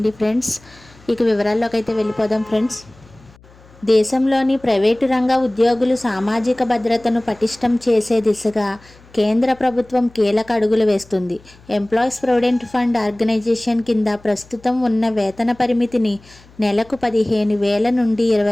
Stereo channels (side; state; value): left; noise; hum, 26 dB below the sound